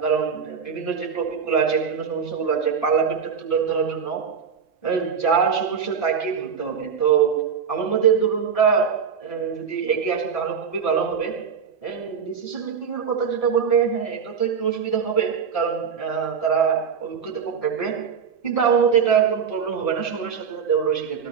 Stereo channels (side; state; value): left; quieter; 6.7 dB